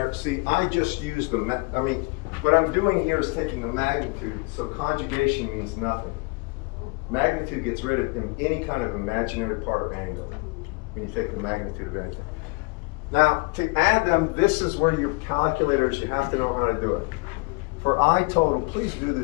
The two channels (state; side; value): quieter; right; 29.7 dB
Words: See, I just used the, what I'm doing here is taking a magnitude, so conjugation means nothing. Magnitude gets rid of any kind of imaginary part or angle when you take the magnitude of anything. Now, to add them, this is where your calculators, you have to know how to do it. For I total, please do